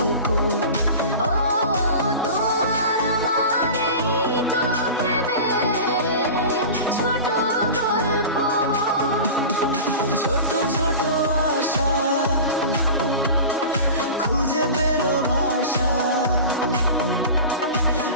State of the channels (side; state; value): both; inverted; correlation -0.33